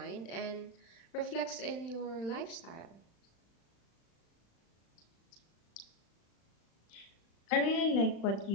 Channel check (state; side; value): late; right; 35 ms